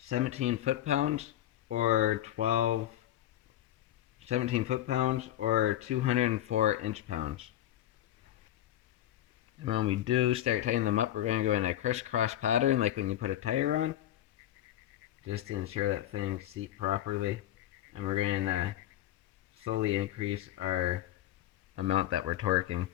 foot-pounds or 17 foot-pounds or 204 inch-pounds. And when we do start tightening them up, we're going to go in a crisscross pattern like when you put a tire on, just to ensure that things seat properly. And we're going to slowly increase our amount that we're torquing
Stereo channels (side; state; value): right; quieter; 12.8 dB